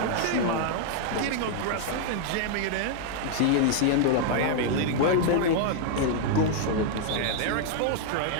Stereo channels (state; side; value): different; both; correlation 0.00